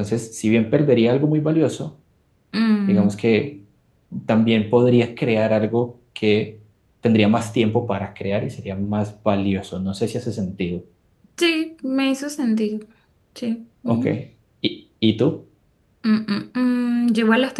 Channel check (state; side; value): identical; both; correlation 1.00